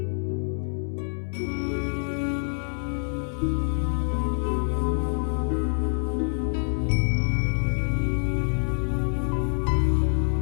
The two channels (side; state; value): right; silent; 61 dB below the other